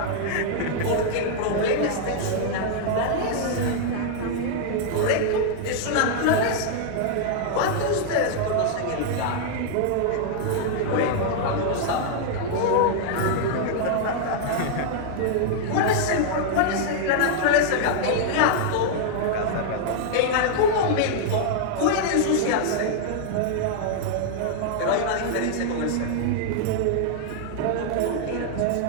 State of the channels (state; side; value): different; both; correlation -0.01